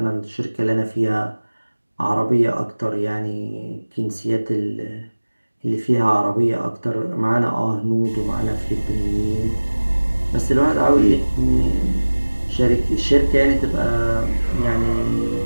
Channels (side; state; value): both; inverted; correlation -1.00